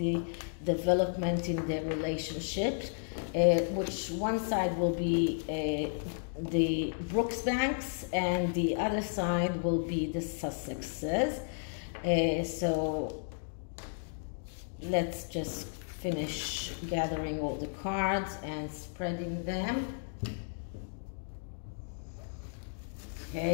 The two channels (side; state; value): right; silent; digital silence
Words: development in their relationship, which one side will be the Brooksbands and the other side will be the Sussexes. So let's just finish gathering all the cards and spreading them.